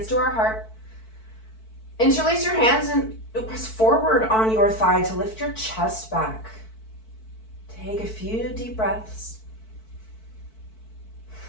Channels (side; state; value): right; late; 4.6 ms